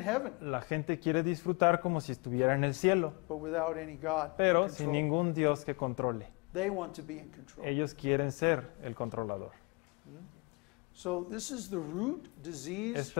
heaven, La gente quiere disfrutar como si estuviera en el cielo, but without any God in pero sin control. ningún Dios que controle. They want to be in control. Ellos quieren ser el controlador. So this is the root disease Esta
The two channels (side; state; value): right; quieter; 30.4 dB